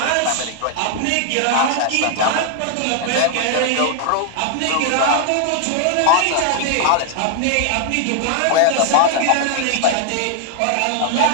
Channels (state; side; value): different; both; correlation 0.00